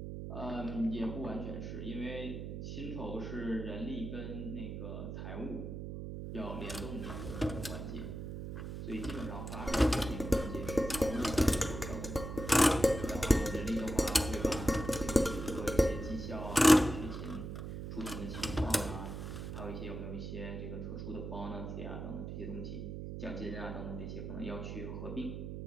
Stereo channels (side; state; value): right; noise; hum, 6 dB below the sound